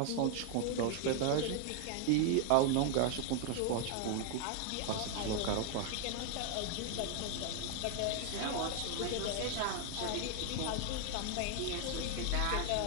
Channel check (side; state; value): both; different; correlation 0.00